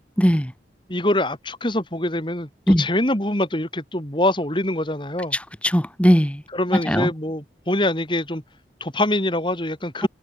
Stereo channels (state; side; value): normal; both; correlation 0.73